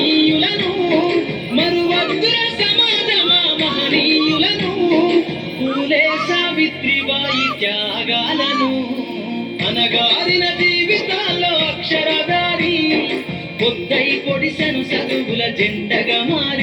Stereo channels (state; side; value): identical; both; correlation 1.00